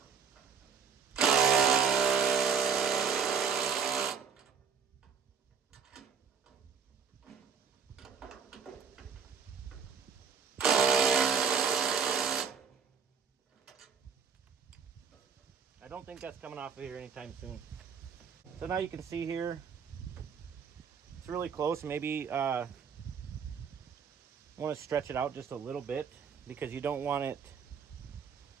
I don't think that's coming off of here anytime soon. So now you can see here, it's really close. Maybe want to stretch it out just a little bit because you don't want it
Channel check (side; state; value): left; quieter; 6.4 dB